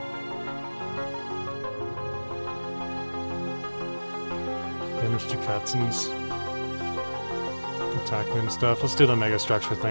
Damage to Katzens. Attack and stuff. Let's do the mega structure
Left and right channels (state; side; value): inverted; both; correlation -1.00